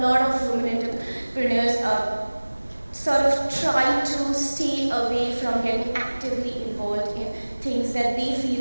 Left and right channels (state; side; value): inverted; both; correlation -1.00